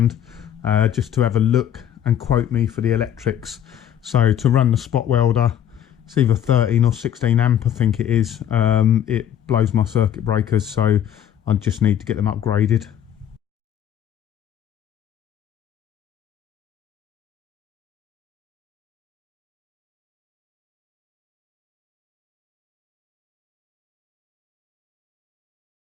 just to have a look and quote me for the electrics. So to run the spot welder, it's either 13 or 16 amp, I think it is. It blows my circuit breakers, so I just need to get them upgraded.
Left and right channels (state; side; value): quieter; right; 9.9 dB